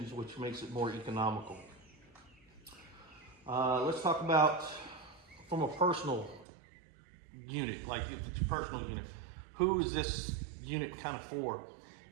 which makes it more economical. Let's talk about from a personal unit, like if it's a personal unit, who is this unit kind of for?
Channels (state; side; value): drops out; left; at 6.5 s